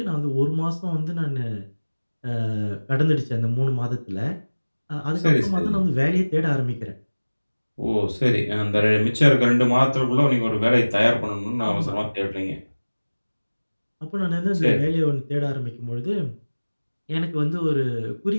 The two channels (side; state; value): both; inverted; correlation -1.00